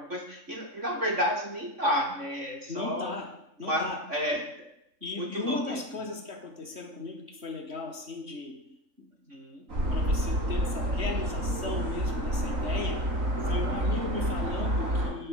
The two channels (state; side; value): late; left; 3.1 ms